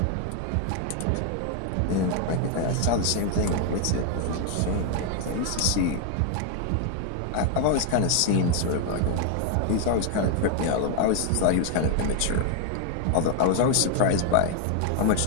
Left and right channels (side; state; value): both; different; correlation 0.00